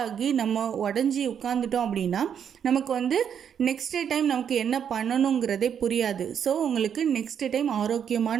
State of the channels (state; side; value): quieter; left; 8.2 dB